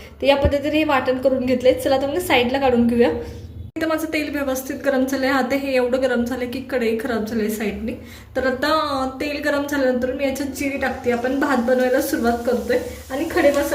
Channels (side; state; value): both; identical; correlation 1.00